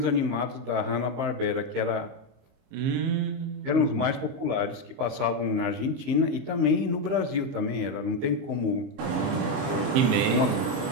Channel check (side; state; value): left; late; 22 ms